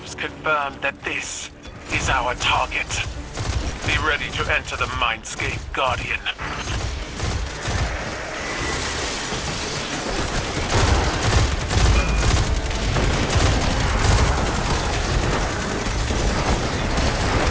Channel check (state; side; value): identical; both; correlation 1.00